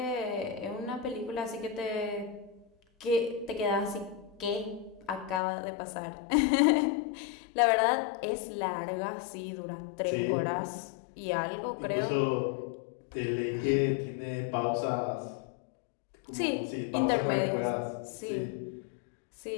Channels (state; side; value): drops out; right; at 5.4 s